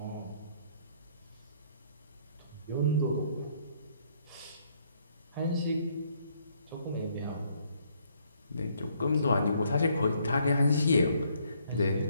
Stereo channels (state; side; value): inverted; both; correlation -0.68